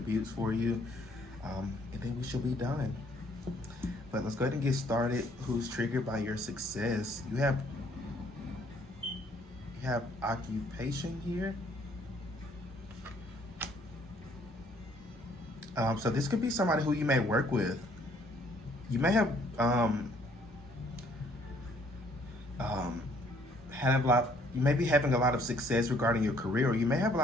for you. And then we should be done. But let's go ahead and get started. Who's triggered by your success? You have occupation here. So this could be somebody who you may work with. You may have you may be having a lot of success regarding your career, or you may have a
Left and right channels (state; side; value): normal; both; correlation 0.63